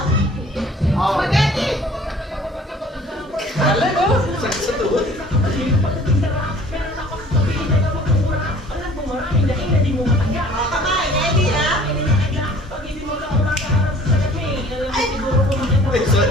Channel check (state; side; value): normal; both; correlation 0.51